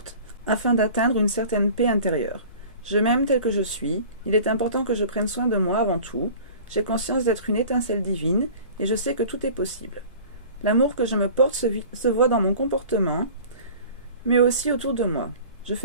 afin d'atteindre une certaine paix intérieure. Je m'aime tel que je suis, il est important que je prenne soin de moi avant tout, j'ai conscience d'être une étincelle divine et je sais que tout est possible. L'amour que je me porte se voit dans mon comportement, mais aussi autour de moi. Je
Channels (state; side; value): inverted; both; correlation -0.43